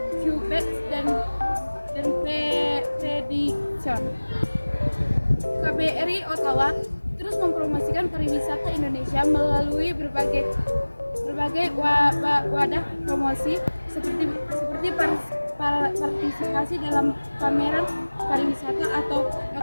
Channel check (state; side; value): inverted; both; correlation -1.00